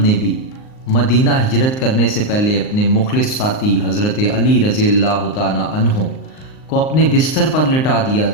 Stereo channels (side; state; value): right; late; 38 ms